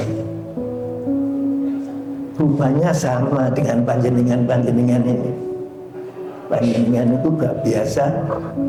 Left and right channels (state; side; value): identical; both; correlation 1.00